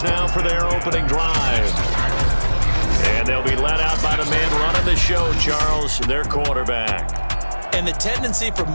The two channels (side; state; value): both; inverted; correlation -1.00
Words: now for their opening drive. And they'll be led out by the man running the show, Charles, their quarterback. And the tendency for